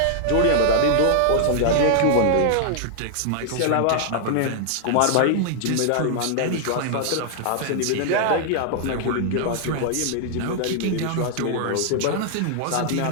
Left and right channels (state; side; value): different; both; correlation -0.01